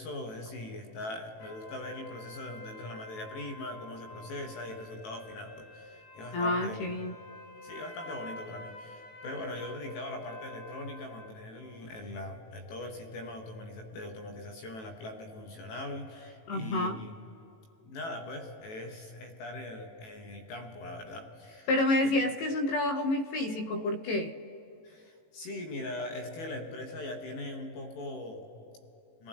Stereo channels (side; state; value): right; late; 18 ms